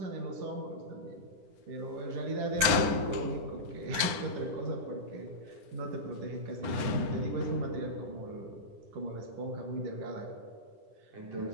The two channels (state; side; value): late; left; 10 ms